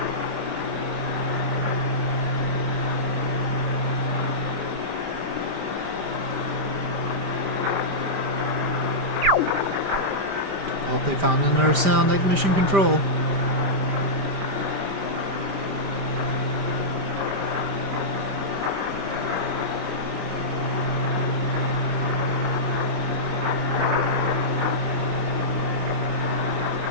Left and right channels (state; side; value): late; left; 5.1 ms